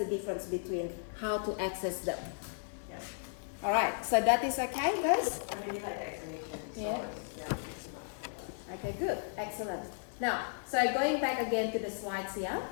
difference between how to access them. Yeah. All right, so that is okay, guys? I really like the explanation. So Yeah. yeah. Okay, good, excellent. Now, so going back again to the slides here,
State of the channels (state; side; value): silent; right; digital silence